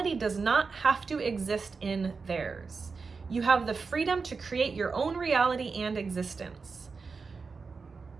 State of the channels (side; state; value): left; quieter; 4.7 dB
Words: does not have to exist in theirs. You have the freedom to create your own reality and existence.